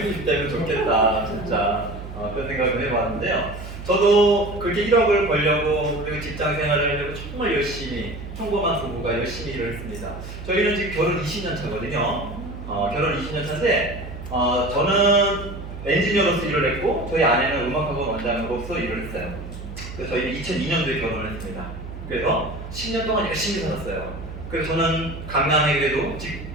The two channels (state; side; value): noise; right; hum, 11 dB below the sound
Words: 되면 좋겠다. 진짜 그런 생각을 해봤는데요. 저도 그렇게 1억을 벌려고 그리고 직장 생활을 하려고 정말 열심히 평범한 부부가 열심히 일을 했습니다. 저희는 지금 결혼 20년 차거든요. 결혼 20년 차인데 저는 엔지니어로서 일을 했고 저희 아내는 음악학원 원장으로서 일을 했어요. 그래서 저희는 2002년도에 결혼을 했습니다. 그래서 10년 동안 열심히 살았어요. 그래서 저는 강남에 그래도